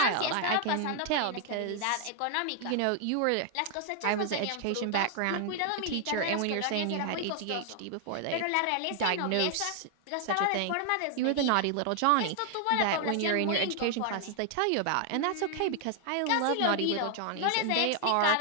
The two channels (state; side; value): different; both; correlation 0.00